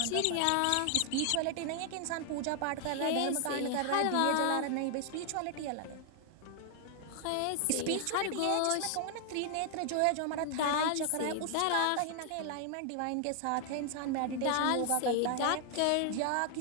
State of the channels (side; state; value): both; different; correlation 0.00